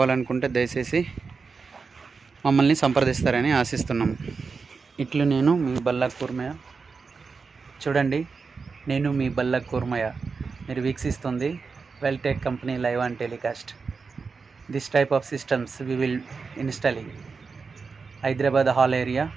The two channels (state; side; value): quieter; left; 4.9 dB